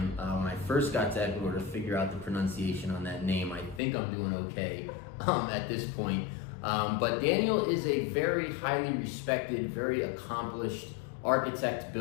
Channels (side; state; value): right; drops out; at 3.8 s